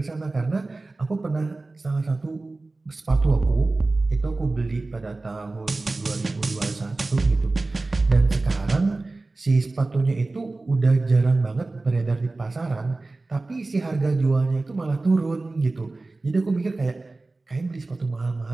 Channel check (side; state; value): left; quieter; 3.3 dB